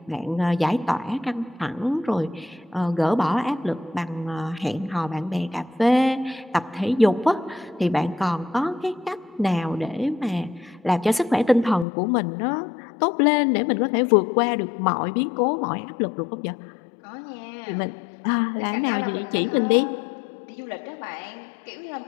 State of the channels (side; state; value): right; drops out; at 11.9 s